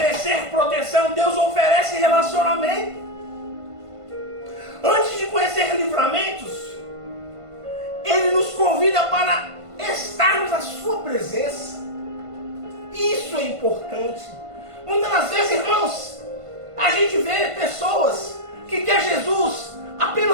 proteção, Deus oferece relacionamento. Antes de conhecer livramentos, Ele nos convida para estarmos na Sua presença. Isso é importante. Muitas das vezes, irmãos, a gente vê pessoas que quer Jesus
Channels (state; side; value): late; left; 1.5 ms